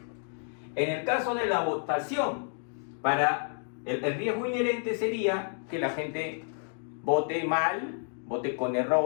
En el caso de la votación, para el riesgo inherente sería que la gente vote mal, vote con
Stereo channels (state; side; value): silent; right; 57 dB below the other